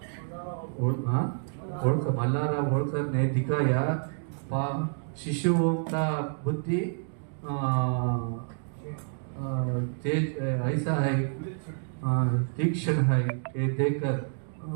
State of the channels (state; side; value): silent; left; digital silence